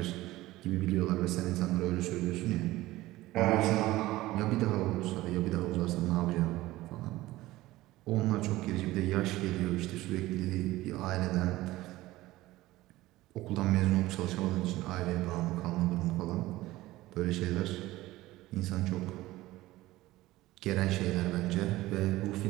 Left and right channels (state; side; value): quieter; left; 17.5 dB